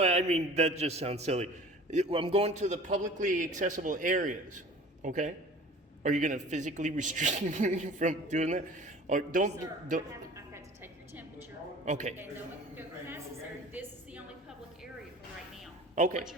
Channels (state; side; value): normal; both; correlation 0.43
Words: I mean, that just sounds silly. I'm going to the publicly accessible areas, okay? Are you going to physically restrict me from doing that? Or don't. Sir, I've got to take your temperature. Okay. And no one can go past this area. This is the only public area for right now. Okay. What's